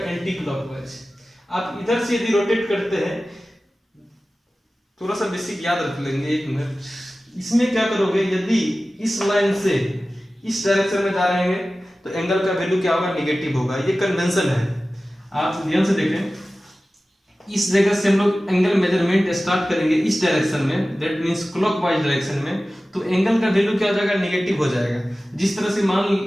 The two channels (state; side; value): normal; both; correlation 0.96